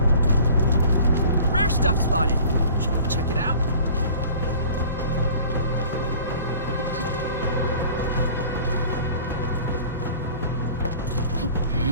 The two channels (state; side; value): inverted; both; correlation -0.46